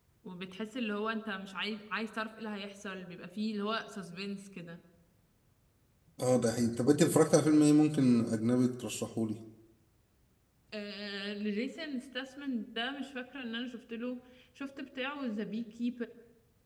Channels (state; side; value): identical; both; correlation 1.00